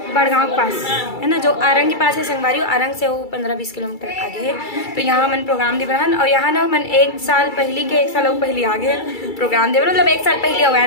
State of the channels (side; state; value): right; late; 2.3 ms